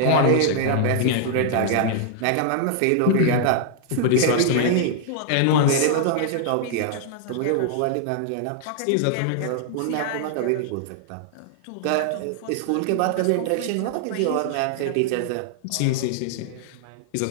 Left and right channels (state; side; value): different; both; correlation -0.01